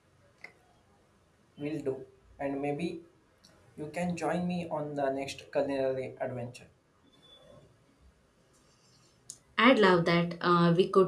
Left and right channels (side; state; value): both; identical; correlation 1.00